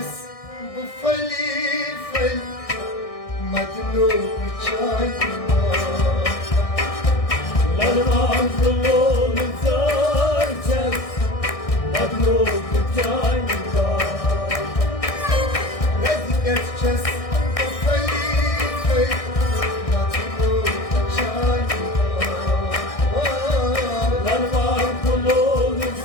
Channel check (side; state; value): right; late; 1.6 ms